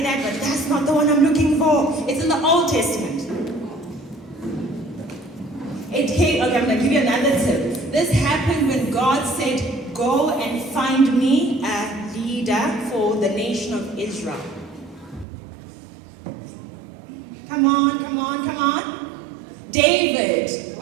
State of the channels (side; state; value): left; drops out; at 15.2 s